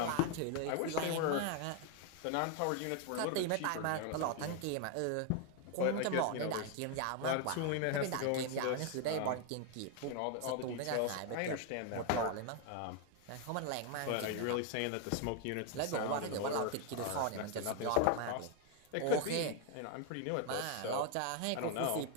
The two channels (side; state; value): both; different; correlation 0.01